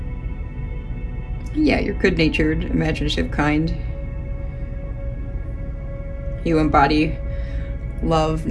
Yeah, you're good-natured, imaginative, kind. You embody love,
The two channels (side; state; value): both; identical; correlation 1.00